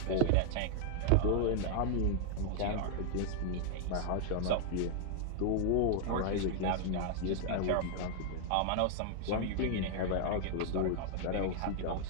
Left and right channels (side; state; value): both; different; correlation -0.01